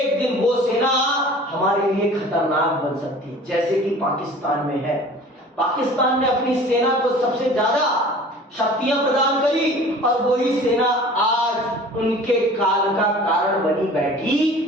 दिन वो सेना हमारे लिए खतरनाक बन सकती है, जैसे कि पाकिस्तान में है। पाकिस्तान ने अपनी सेना को सबसे ज्यादा शक्तियां प्रदान करी, और वही सेना आज उनके काल का कारण बनी बैठी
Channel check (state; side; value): normal; both; correlation 0.45